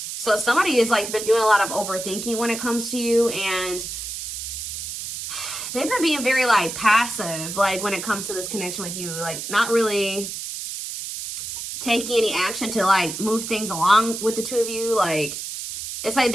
So somebody has been doing a lot of overthinking when it comes to you, and they've been being very passive when it comes to this connection with you, not really taking any action to move things along with the two of you. It's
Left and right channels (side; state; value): right; noise; hiss, 7 dB below the sound